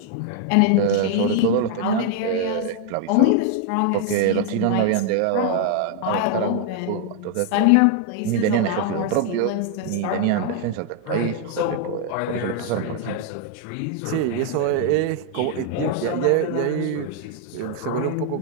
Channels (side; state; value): both; different; correlation 0.00